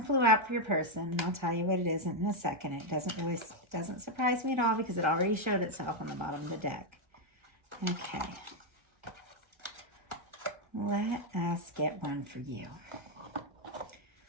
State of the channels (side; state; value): left; late; 1.4 ms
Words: out for your person, and I'll tell you what it is in a second. It doesn't surprise me at all because it already showed itself on the bottom of the deck. Okay. Let us get one for you.